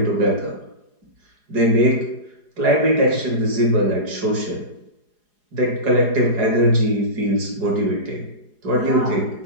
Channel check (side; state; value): left; late; 4.8 ms